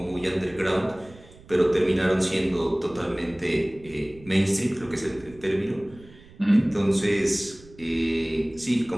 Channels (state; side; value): noise; right; rumble, 22 dB below the sound